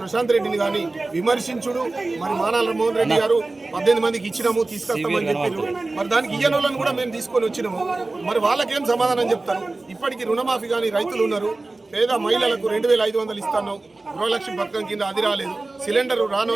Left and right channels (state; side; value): quieter; left; 3.2 dB